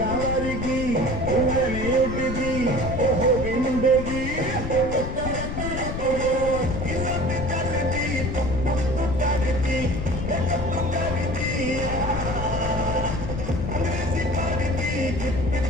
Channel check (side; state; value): left; noise; rumble, 5 dB below the sound